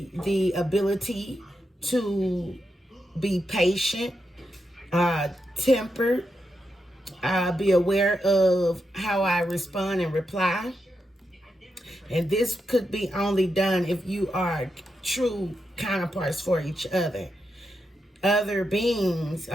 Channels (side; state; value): both; normal; correlation 0.86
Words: the ability to be patient, tempered, be aware of how I respond and reply. And this could be only done if you are true counterparts for each other. Other beings,